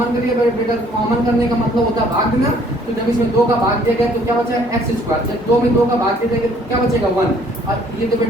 करिए बेटा। कॉमन करने का मतलब होता है भाग देना। तो जब इसमें 2 का भाग दिया गया तो क्या बचा x²। जब 2 में 2 का भाग दे देंगे तो क्या बचेगा 1, और ये तो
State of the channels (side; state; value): both; normal; correlation 0.60